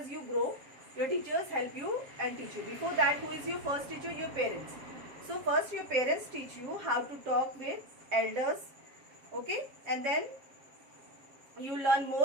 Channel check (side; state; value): left; late; 7.4 ms